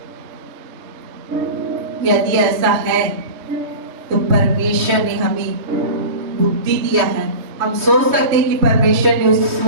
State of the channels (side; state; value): left; late; 3.2 ms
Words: यदि ऐसा है तो परमेश्वर ने हमें बुद्धि दिया है। हम सोच सकते हैं कि परमेश्वर ने उस